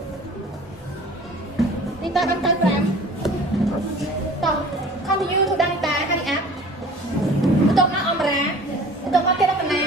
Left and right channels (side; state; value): both; normal; correlation 0.45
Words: នេះតើអត់ទៅ5តោះ continue to ដល់តាហើយអាប់បន្ទាប់មកអមរាបន្ទាប់មកទៀតរតនា